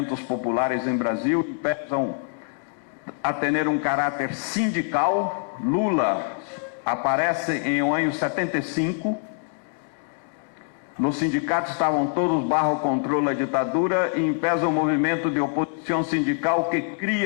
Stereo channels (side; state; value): right; silent; 62 dB below the other